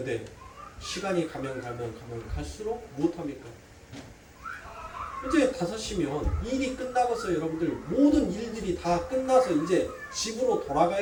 시간이 가면 갈수록 무엇합니까? 이제 5시면 일이 끝나고서 여러분들 모든 일들이 다 끝나서 이제 집으로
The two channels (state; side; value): identical; both; correlation 1.00